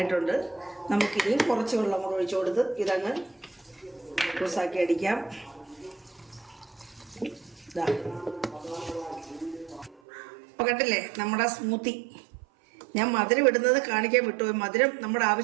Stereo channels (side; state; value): left; drops out; at 10.0 s